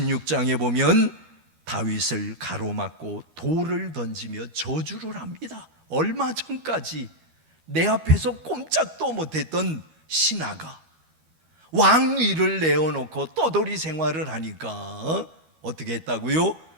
보면 다윗을 가로막고 돌을 던지며 저주를 합니다. 얼마 전까지 내 앞에서 꼼짝도 못했던 신하가 왕위를 내어놓고 떠돌이 생활을 하니까 어떻게 했다고요?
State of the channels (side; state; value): left; late; 13 ms